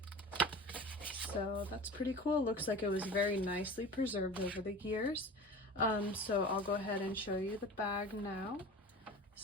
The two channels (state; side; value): normal; both; correlation 0.36